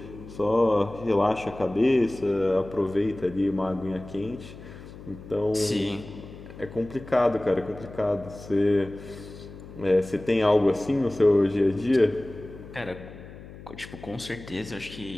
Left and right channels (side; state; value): left; noise; hum, 16 dB below the sound